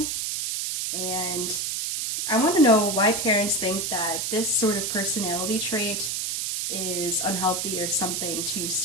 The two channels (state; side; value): noise; right; hiss, 1 dB below the sound